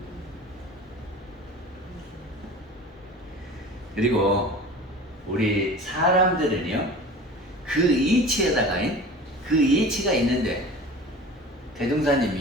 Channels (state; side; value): normal; both; correlation 0.38